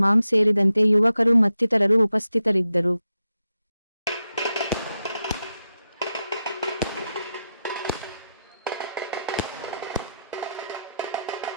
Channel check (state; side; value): inverted; both; correlation -0.88